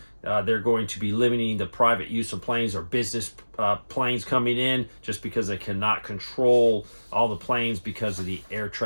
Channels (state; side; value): inverted; both; correlation -1.00